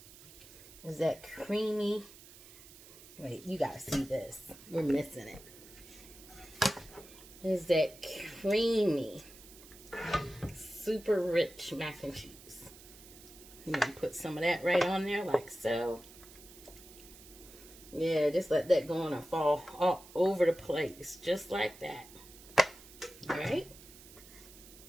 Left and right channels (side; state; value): right; noise; hiss, 19 dB below the sound